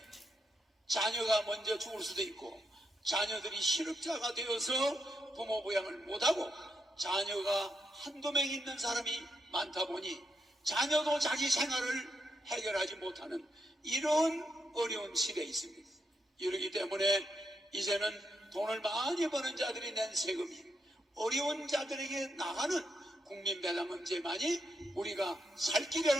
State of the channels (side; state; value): both; normal; correlation 0.81